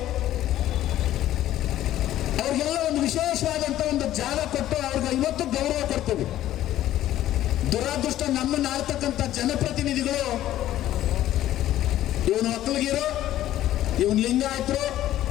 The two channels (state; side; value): quieter; right; 13.3 dB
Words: ಅವ್ರಿಗೆಲ್ಲ ಒಂದು ವಿಶೇಷವಾದಂತ ಒಂದು ಜಾಗ ಕೊಟ್ಟು ಅವ್ರಿಗೆ ಇವತ್ತು ಗೌರವ ಕೊಡ್ತೀವಿ. ದುರಾದೃಷ್ಟ ನಮ್ಮನ್ನ ಆಳ್ತಕ್ಕಂಥ ಜನಪ್ರತಿನಿಧಿಗಳು ಇವನು ಒಕ್ಕಲಿಗರು, ಇವನ್ ಲಿಂಗಾಯತರು,